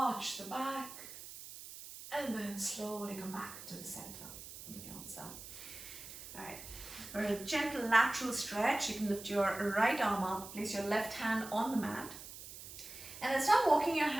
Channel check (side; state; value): right; noise; hiss, 13 dB below the sound